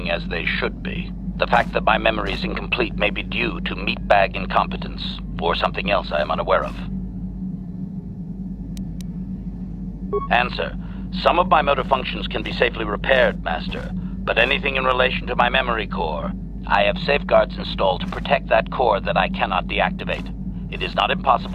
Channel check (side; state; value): both; identical; correlation 1.00